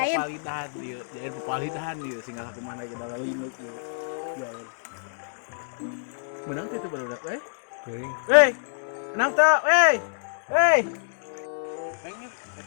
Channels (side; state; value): right; silent; digital silence